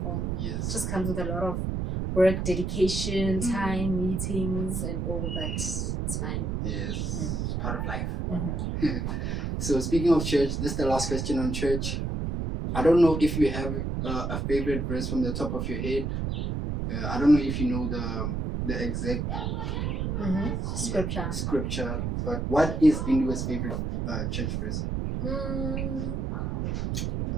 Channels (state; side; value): noise; right; rumble, 1 dB below the sound